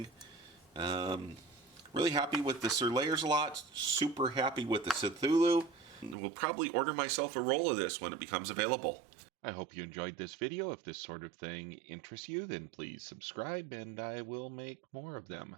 Really happy with the Sir Layersalot. Super happy with the Cthulhu. Will probably order myself a roll of this when it becomes available. I hope you enjoyed this video. If this sort of thing interests you, then please subscribe and I will make more of them.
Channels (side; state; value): left; drops out; at 6.2 s